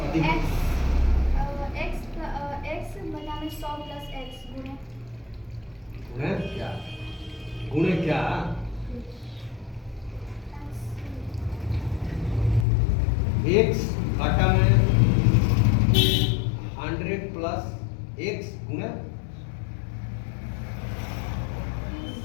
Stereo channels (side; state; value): right; drops out; at 12.7 s